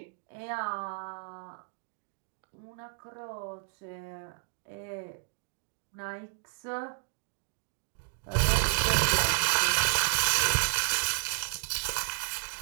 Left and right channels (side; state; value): left; silent; 57 dB below the other